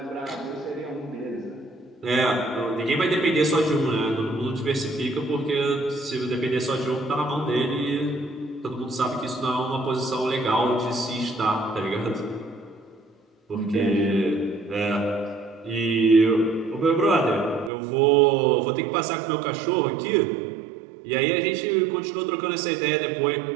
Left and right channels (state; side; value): drops out; left; at 17.7 s